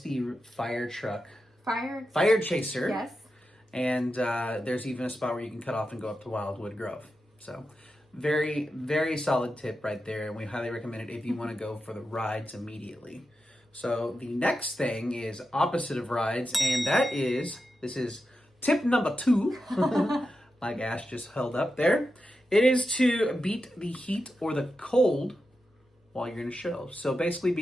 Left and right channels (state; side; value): normal; both; correlation 0.90